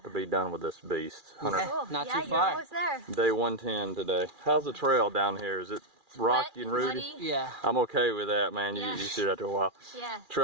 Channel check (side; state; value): left; late; 2.4 ms